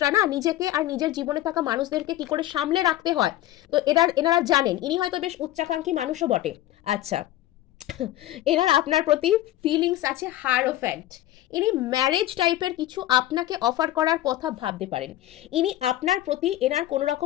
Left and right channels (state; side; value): quieter; right; 14.6 dB